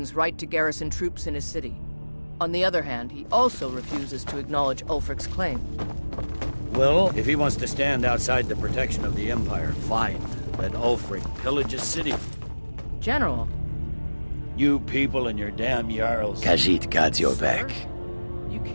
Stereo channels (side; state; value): both; inverted; correlation -1.00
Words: right to garrison troops in his city. On the other hand, he also refuses to acknowledge Ulfric's claim. Well, if he wants to stand outside the protection of the Empire, fine. Let Ulfric pillage his city. General. You people and your damn Jarls. Khajiit got your back. You